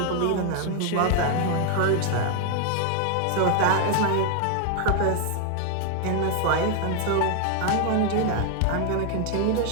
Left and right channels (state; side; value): different; both; correlation 0.00